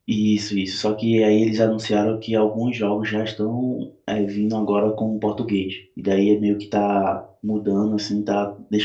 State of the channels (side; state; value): both; identical; correlation 1.00